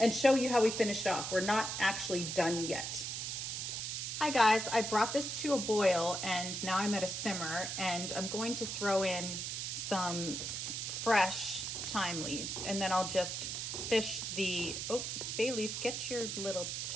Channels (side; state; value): right; noise; hiss, 3 dB below the sound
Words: show you how we finished off. We're not actually done yet. Hi guys, I brought this to a boil and now I'm at a simmer, and I'm going to throw in some fresh thyme leaves, and then I'll just fish the, oh, bay leaf, get your little